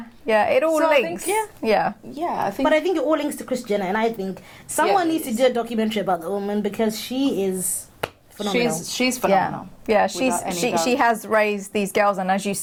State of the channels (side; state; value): both; identical; correlation 1.00